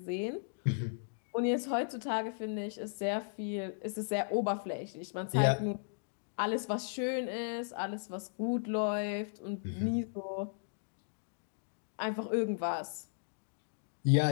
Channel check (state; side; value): silent; right; digital silence